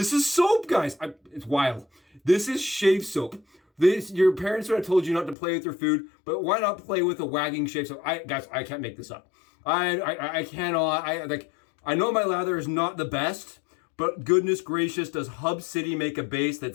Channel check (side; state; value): right; drops out; at 5.4 s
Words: is soap, guys. It's wild. This is shave soap. Your parents would have told you not to play with your food, but why not play with a wagging shave soap? Guys, I can't make this up. I cannot. I know my lather is not the best, but goodness gracious, does Hub City make a base